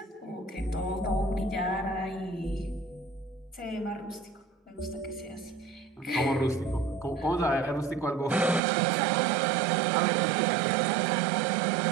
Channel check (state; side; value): drops out; left; at 8.6 s